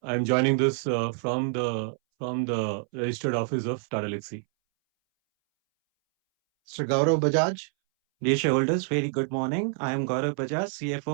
I'm joining this from the registered office of Tata Elxsi. Mr. Gaurav Bajaj. Dear shareholders, very good morning. I am Gaurav Bajaj,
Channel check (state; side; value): silent; left; 60 dB below the other